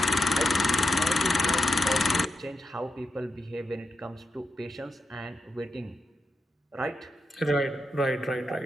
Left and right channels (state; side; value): normal; both; correlation 0.86